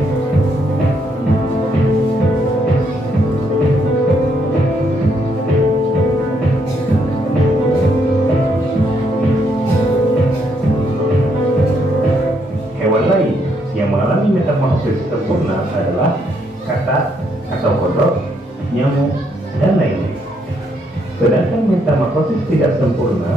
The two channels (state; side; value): normal; both; correlation 0.74